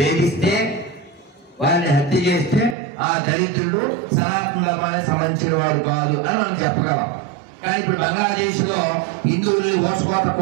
వారిని హత్య చేస్తే ఆ దరిద్రుడు సనాతన ధర్మాన్ని సంబంధించిన వాడు కాదు అని మనం చెప్పగలం. కానీ ఇప్పుడు బంగ్లాదేశ్ లో హిందువుల్ని ఓసుకోత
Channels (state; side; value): drops out; left; at 2.8 s